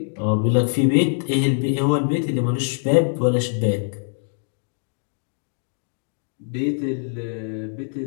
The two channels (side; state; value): right; silent; digital silence